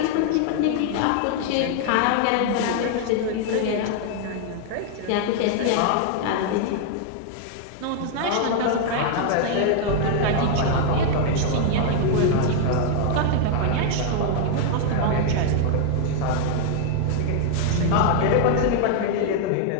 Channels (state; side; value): different; both; correlation 0.00